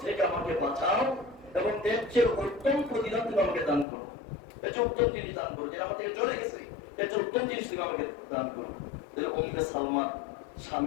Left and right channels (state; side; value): drops out; right; at 3.9 s